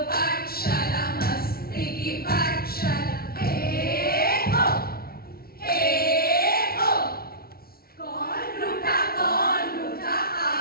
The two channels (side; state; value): right; late; 0.44 ms